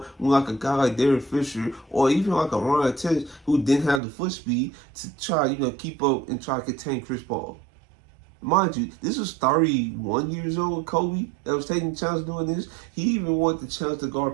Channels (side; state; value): left; drops out; at 4.0 s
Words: when like a guy like Derek Fisher or even like a Ron Artest who didn't have the foot speed to try keep up and try to contain Chris Paul. Mind you, this was 31 years old Kobe that was taking the chance doing this. He even wanted the chance to